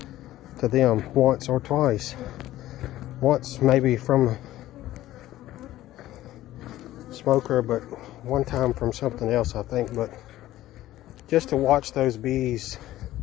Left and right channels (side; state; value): right; quieter; 14.9 dB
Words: to them once or twice. Once maybe from a smoker, but one time from something else, I think. But just to watch those bees